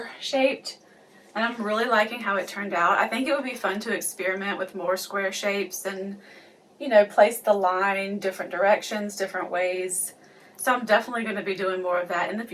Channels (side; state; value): both; identical; correlation 1.00